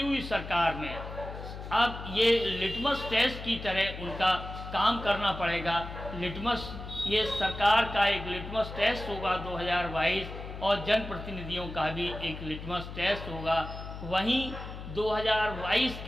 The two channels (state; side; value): noise; left; hum, 10 dB below the sound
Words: सरकार में अब ये लिटमस टेस्ट की तरह उनका काम करना पड़ेगा। ये सरकार का एक लिटमस टेस्ट होगा 2022 और जनप्रतिनिधियों का भी एक लिटमस टेस्ट होगा। वहीं 2022